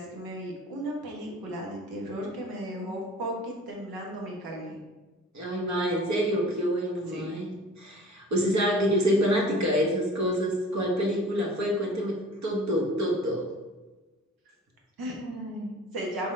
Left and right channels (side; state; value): both; normal; correlation 0.44